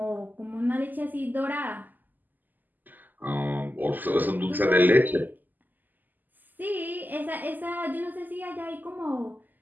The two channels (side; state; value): left; late; 0.086 ms